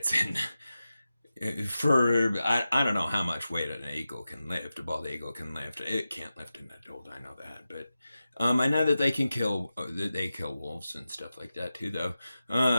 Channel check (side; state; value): both; inverted; correlation -0.93